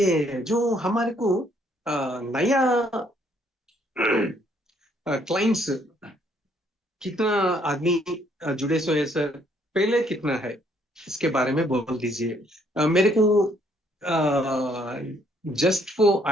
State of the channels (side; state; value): both; normal; correlation 0.67